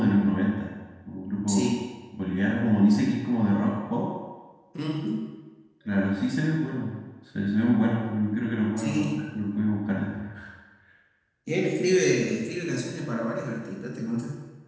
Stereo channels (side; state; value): both; identical; correlation 1.00